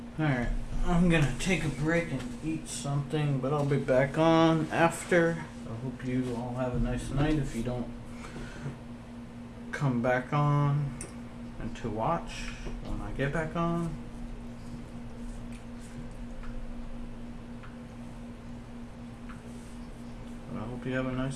Alright, I'm gonna take a break and eat something, but I'll be back on after. I hope you all have a nice night if you don't come back on and to watch when I get back on. But I hope you have a nice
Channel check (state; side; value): identical; both; correlation 1.00